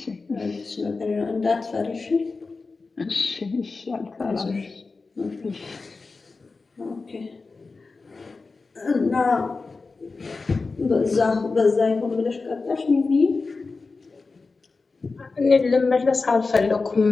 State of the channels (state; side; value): quieter; right; 4.0 dB